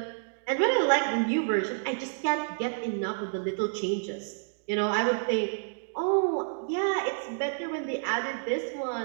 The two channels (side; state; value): left; silent; digital silence